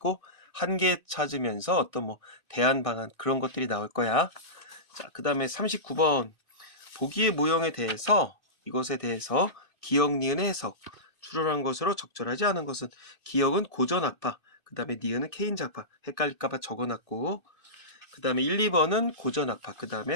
한계 찾으면서 어떤 대안 방안 그런 것들이 나올 거야. 자, 그 다음에 39번 보기의 모형에 대해서 이것에 대해서 기억, 니은의 해석. 추론한 것으로 적절하지 않은 것은 기억은 고전학파, 그 다음에 니은은 케인즈학파. 헷갈릴까봐 적어놨고, 그 다음에 1, 2번은 고전학파, 그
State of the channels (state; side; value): late; left; 2.5 ms